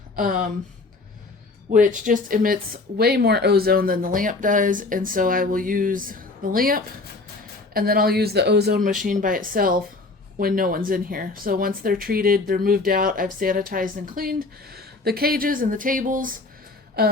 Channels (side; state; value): right; quieter; 3.5 dB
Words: which just emits way more ozone than the lamp does. And so I will use the lamp, and then I'll use the ozone machine by itself when no one's in here. So once they're treated, they're moved out, I've sanitized and cleaned the cages and the tables.